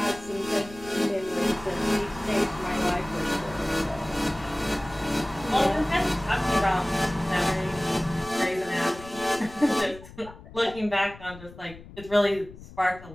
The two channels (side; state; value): left; noise; rumble, 17 dB below the sound